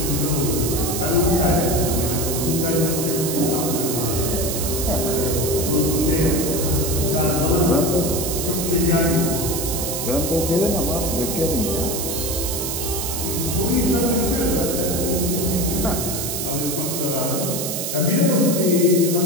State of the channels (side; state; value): right; noise; hiss, 3 dB below the sound